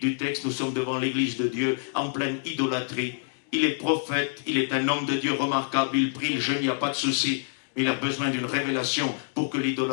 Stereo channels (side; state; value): right; silent; digital silence